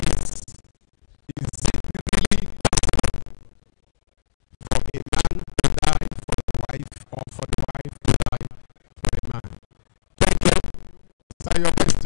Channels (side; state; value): right; silent; digital silence